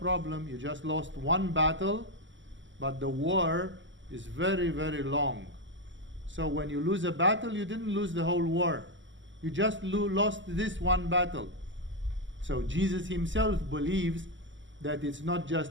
You just lost one battle, but the war is very, very long. So when you lose a battle, you didn't lose the whole war. You just lost this one battle. So Jesus himself believes that it's not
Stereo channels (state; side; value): late; left; 0.55 ms